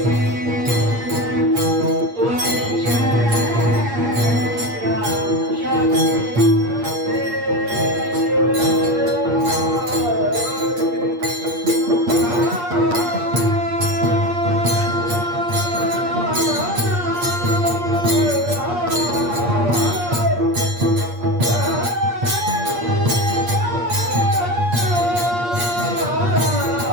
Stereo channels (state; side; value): late; left; 8.5 ms